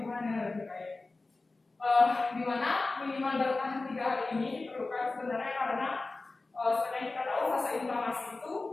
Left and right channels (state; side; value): quieter; right; 3.4 dB